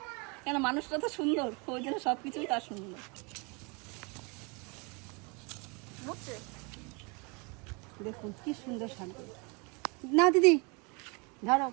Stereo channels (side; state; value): left; quieter; 31.1 dB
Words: কেন মানুষটা তো সুন্দর, ওই জন্য সব কিছুই তার সুন্দর। দেখুন কি সুন্দর শাকগুলো। না দিদি ধরো,